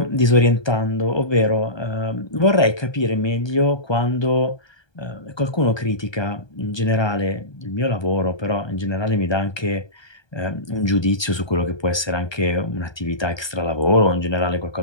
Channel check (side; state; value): right; late; 1.2 ms